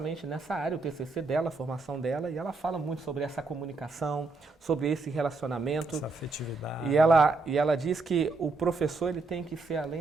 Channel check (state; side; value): quieter; left; 3.7 dB